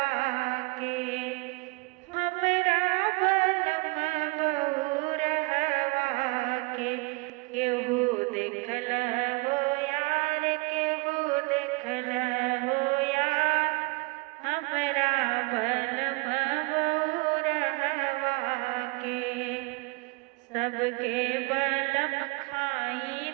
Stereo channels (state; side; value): quieter; left; 27.8 dB